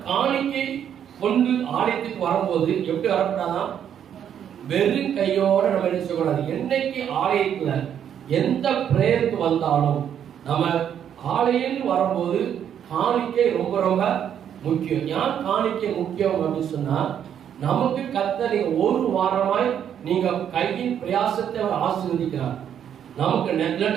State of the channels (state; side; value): quieter; left; 9.1 dB